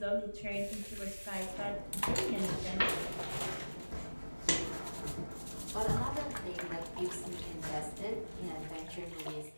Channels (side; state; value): both; inverted; correlation -1.00